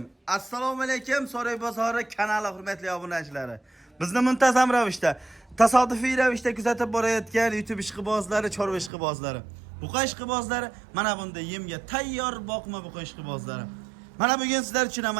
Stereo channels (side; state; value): left; drops out; at 8.9 s